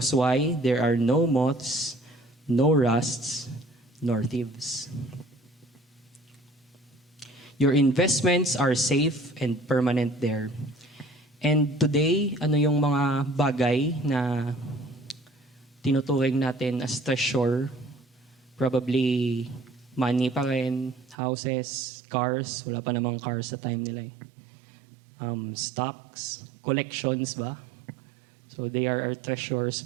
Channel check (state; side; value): drops out; left; at 21.2 s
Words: why? There are no moths, no rusts, nor thieves. Your investments are safe and permanent there. And today, ano yung mga bagay na tinuturing natin as treasure? Probably money pa rin, houses, cars. Wala pa namang cars sa time nila eh. Stocks, collections ba? So they are our treasures,